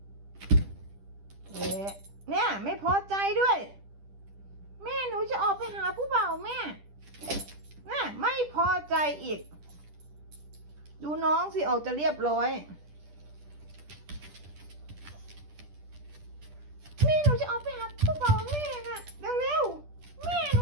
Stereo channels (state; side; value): late; left; 10 ms